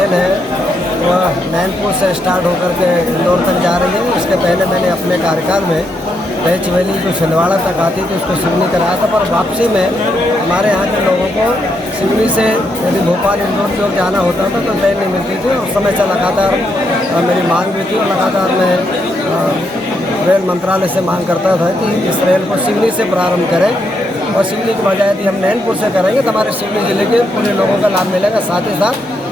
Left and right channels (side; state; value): both; normal; correlation 0.79